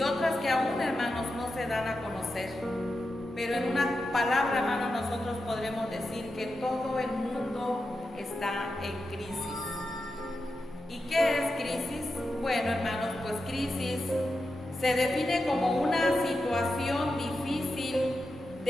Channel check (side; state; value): both; normal; correlation 0.89